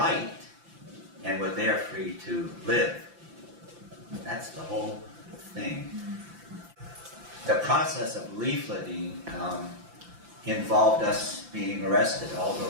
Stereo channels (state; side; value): late; left; 5.8 ms